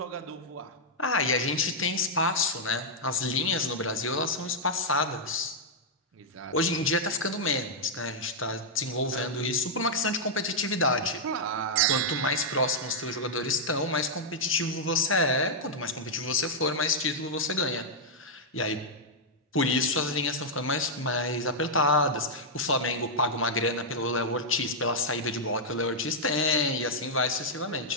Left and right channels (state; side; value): normal; both; correlation -0.06